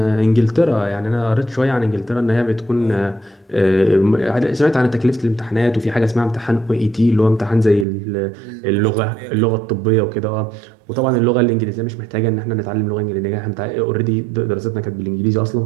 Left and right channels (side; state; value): left; drops out; at 7.9 s